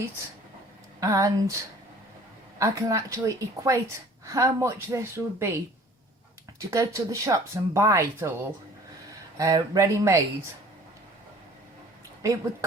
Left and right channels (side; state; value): both; normal; correlation 0.50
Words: and I can actually equate how much this would be to go to the shops and buy it all ready-made. It would